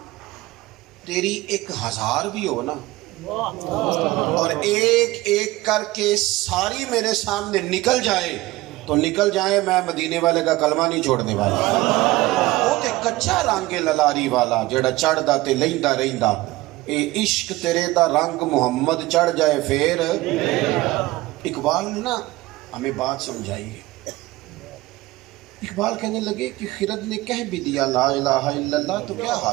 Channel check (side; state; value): left; quieter; 18.9 dB